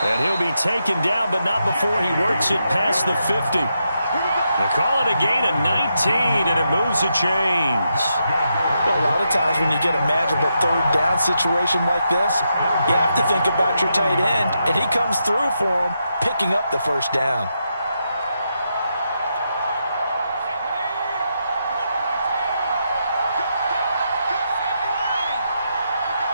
And he'll be taken down, but not before he works it past the 50. They call it a gain of 19, and it moves the chains. Well, a lot of times when you get a manageable third down situation like this, you have to think about your tight end, and he comes through for him, picking up the first down.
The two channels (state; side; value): inverted; both; correlation -0.83